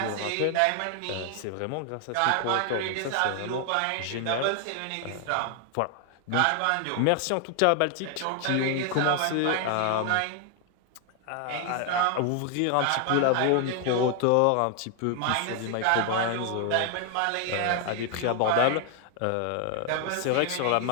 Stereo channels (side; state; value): both; different; correlation 0.00